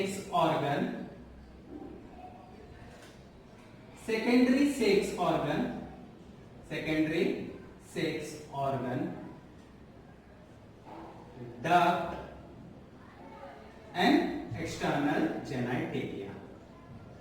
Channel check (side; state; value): both; identical; correlation 1.00